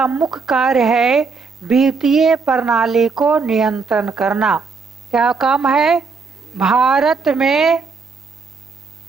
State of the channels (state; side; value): quieter; left; 4.8 dB